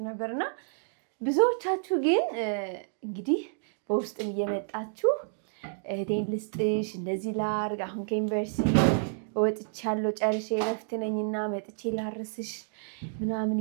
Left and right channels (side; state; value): left; silent; digital silence